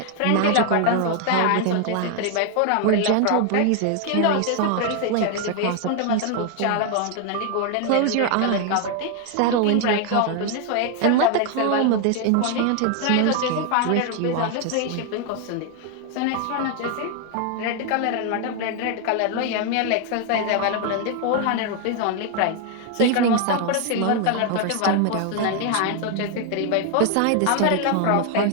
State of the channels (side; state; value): both; different; correlation 0.00